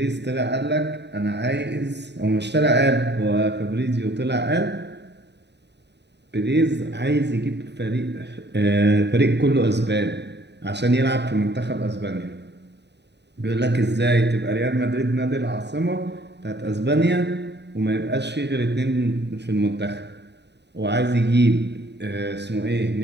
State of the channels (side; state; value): left; late; 0.50 ms